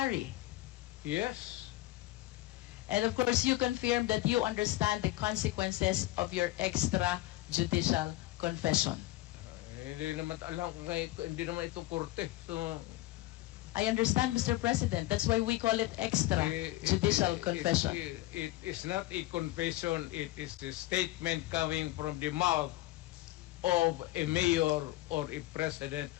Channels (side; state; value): right; quieter; 17.4 dB